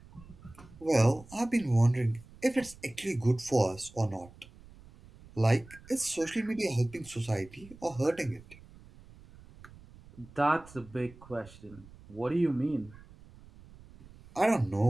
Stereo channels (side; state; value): right; noise; rumble, 22 dB below the sound